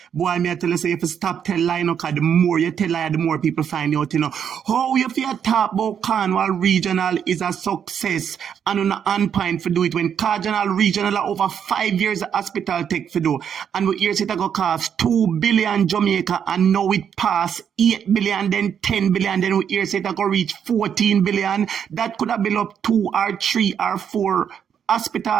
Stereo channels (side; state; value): left; quieter; 8.1 dB